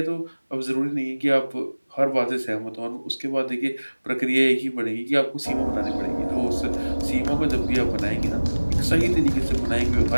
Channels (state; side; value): inverted; both; correlation -1.00